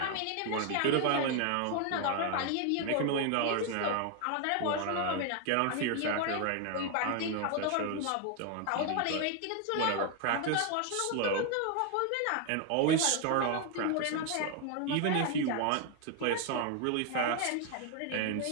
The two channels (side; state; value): both; different; correlation 0.01